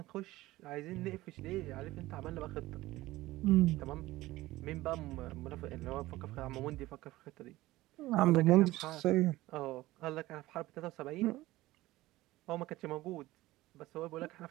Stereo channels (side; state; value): left; quieter; 17.7 dB